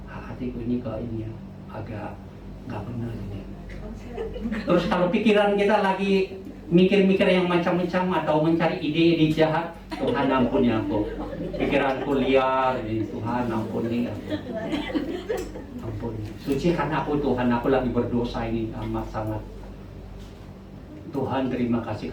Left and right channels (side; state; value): both; identical; correlation 1.00